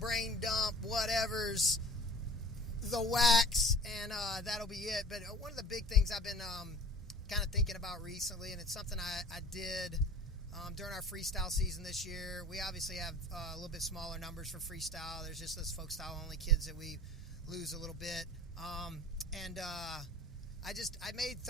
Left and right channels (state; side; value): normal; both; correlation 0.42